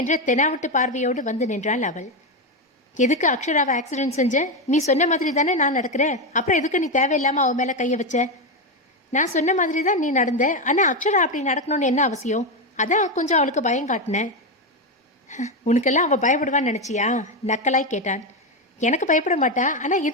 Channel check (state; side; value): normal; both; correlation 0.10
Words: தெனாவட்டு பார்வையோடு வந்து நின்றாள் அவள். எதுக்கு அக்ஷராவை ஆக்சிடென்ட் செஞ்ச? நீ சொன்ன மாதிரி தானே நான் நடக்கிறேன். அப்புறம் எதுக்கு நீ தேவையில்லாமல் அவன் மேலே கையை வச்ச? நான் சொன்ன மாதிரி தான் நீ நடந்த. ஆனால் அக்ஷரா அப்படி நடக்கணும்னு என்ன அவசியம்? அதான் கொஞ்சம் அவளுக்கு பயம் காட்டினேன். உனக்கெல்லாம் அவள் பயப்படுவான்னு நினச்சியா? நக்கலாய் கேட்டான். எனக்கு பயப்பட மாட்டா, ஆனால்